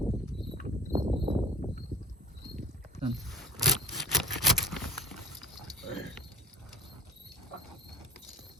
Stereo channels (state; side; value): normal; both; correlation 0.45